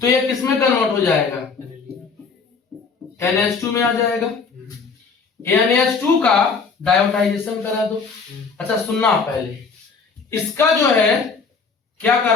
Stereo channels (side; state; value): right; quieter; 5.1 dB